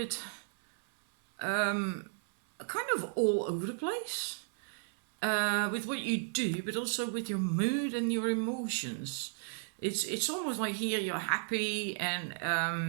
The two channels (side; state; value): left; silent; 55 dB below the other